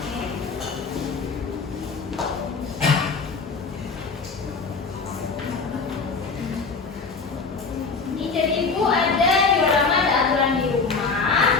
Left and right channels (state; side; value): quieter; right; 4.6 dB